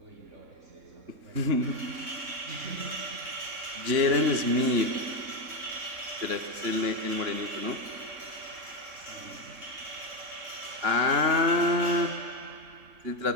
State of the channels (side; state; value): left; late; 3.6 ms